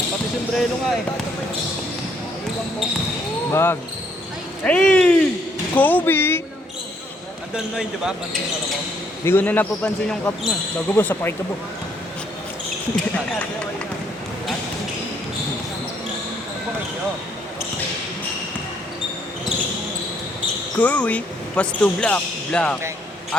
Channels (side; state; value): both; normal; correlation 0.69